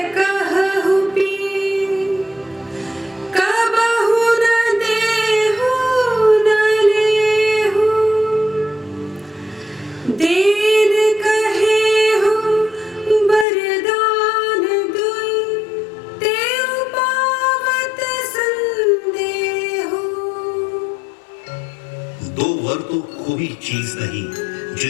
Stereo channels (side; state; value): right; drops out; at 13.5 s